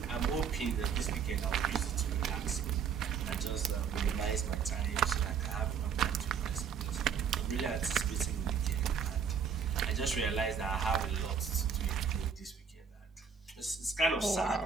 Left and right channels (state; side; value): quieter; left; 6.6 dB